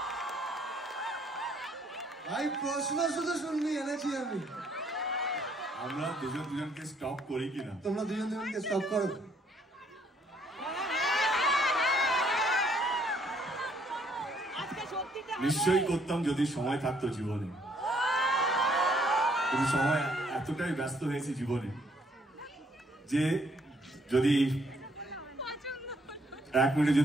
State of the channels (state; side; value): normal; both; correlation 0.67